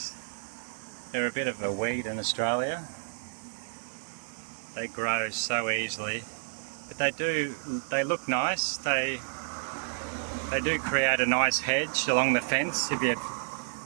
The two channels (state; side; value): silent; left; 58 dB below the other